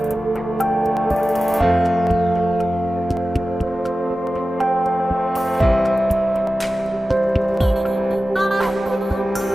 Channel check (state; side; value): normal; both; correlation 0.95